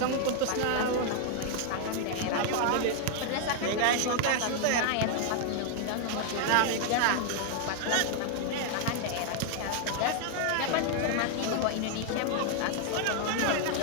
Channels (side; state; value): both; different; correlation 0.00